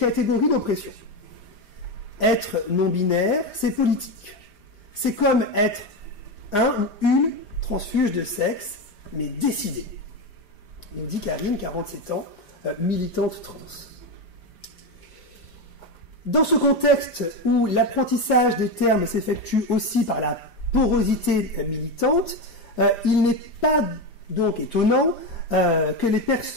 d'oppression. Être non-binaire, c'est politique. C'est comme être un ou une transfuge de sexe, mais décidé. Nous dit Karine, 47 ans, militante trans. Dans ce contexte où l'apprentissage des termes s'effectue aussi par la porosité militante, il n'est pas donc étonnant que les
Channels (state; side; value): late; right; 5.0 ms